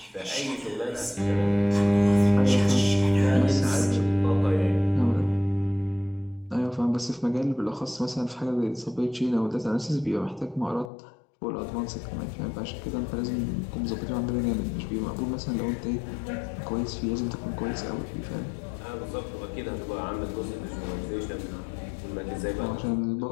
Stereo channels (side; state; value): right; drops out; at 10.9 s